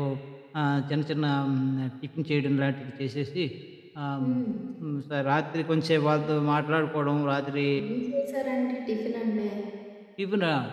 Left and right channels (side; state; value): both; identical; correlation 1.00